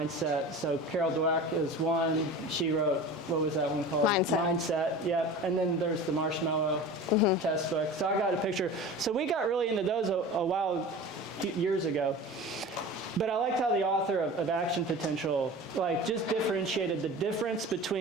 So Carol Dweck is one. She wrote, what was that one called? Mindset, yep. And then there's the Marshmallow Test book. So I got a picture. So we got really into those years ago. But I liked how the author of Action Potential just differentiated the difference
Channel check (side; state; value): both; normal; correlation 0.35